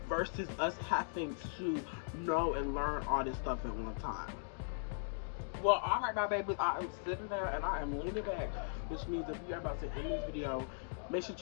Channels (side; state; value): right; silent; digital silence